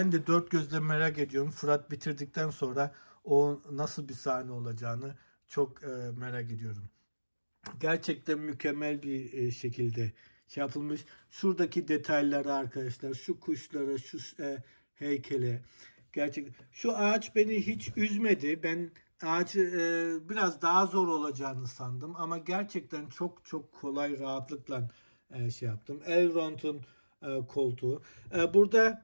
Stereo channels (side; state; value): both; inverted; correlation -1.00